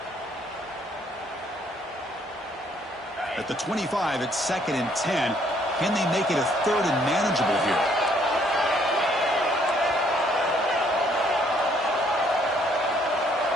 At the 25, it's 2nd and 10. Can they make it a 3rd and manageable here?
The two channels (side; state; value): both; normal; correlation 0.66